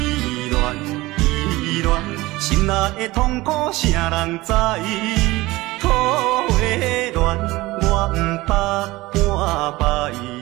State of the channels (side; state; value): left; quieter; 19.7 dB